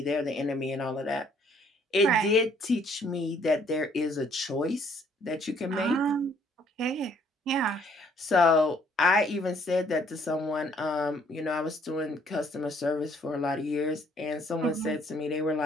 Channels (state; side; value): normal; both; correlation 0.64